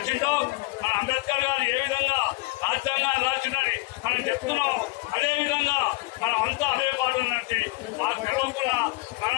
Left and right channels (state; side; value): quieter; right; 23.6 dB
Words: మన అంబేద్కర్ గారు ఏ విధంగా రాజ్యాంగాన్ని రాసిందని మనం చెప్తున్నాం, అదే విధంగా మనం అంతా అదే పాట నడిచి మాకు తెలియకుండా